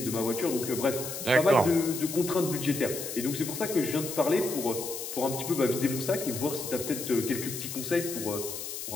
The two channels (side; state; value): left; noise; hiss, 7 dB below the sound